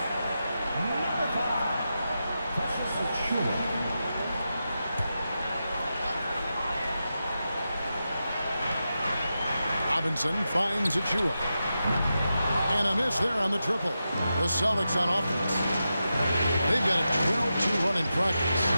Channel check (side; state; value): both; inverted; correlation -0.89